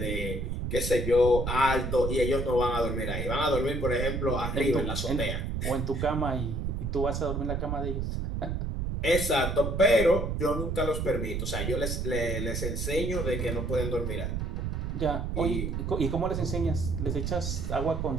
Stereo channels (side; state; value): right; noise; rumble, 2 dB below the sound